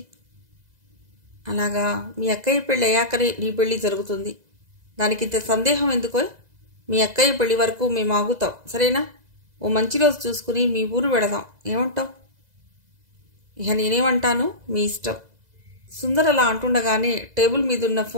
అలాగా, మీ అక్కయ్య పెళ్లి అయ్యాకనే నీ పెళ్లి జరుగుతుంది. దానికింత సందేహం ఎందుకో? మీ అక్కయ్య పెళ్లి వరకు మేము ఆగుతాం, సరేనా? ఓ మంచి రోజు చూసుకుని మీ ఊరు వెళదాం, ఏమంటావు? ఇక నేనేమంటాను, మీ ఇష్టం. సుందర్ అలా అంటుండగానే టేబుల్ మీదున్న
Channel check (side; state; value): left; late; 2.0 ms